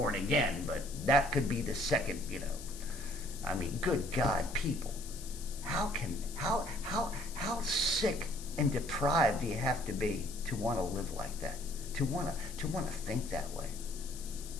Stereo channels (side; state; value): left; noise; hiss, 14 dB below the sound